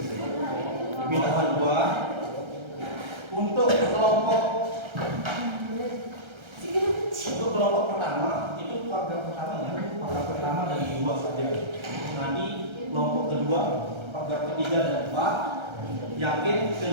Pilihan 2 untuk kelompok pertama itu paragraf pertamanya paragraf pertama dari 2 saja. Nanti kelompok kedua paragraf ketiga dan 4, yakin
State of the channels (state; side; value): late; left; 1.3 ms